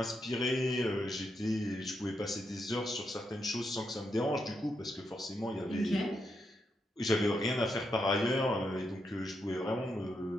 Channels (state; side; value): normal; both; correlation 0.82